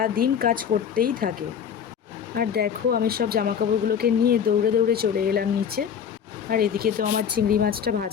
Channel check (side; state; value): right; quieter; 7.8 dB